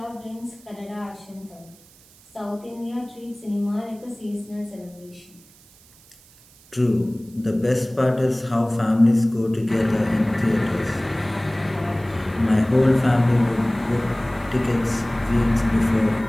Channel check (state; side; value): noise; right; hiss, 27 dB below the sound